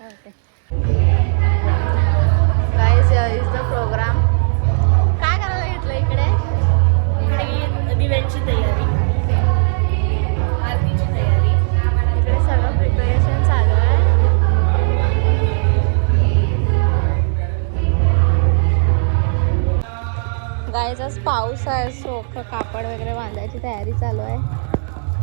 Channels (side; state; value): left; silent; digital silence